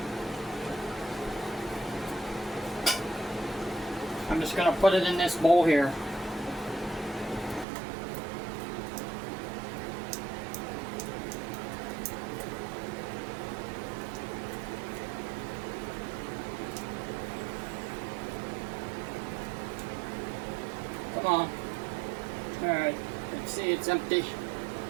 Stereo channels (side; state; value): left; drops out; at 7.7 s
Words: I'm just going to put it in this bowl here. Come on. Alright, let's see, it's empty.